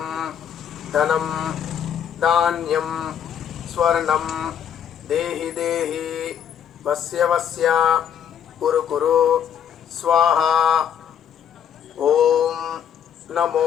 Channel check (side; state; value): right; quieter; 8.8 dB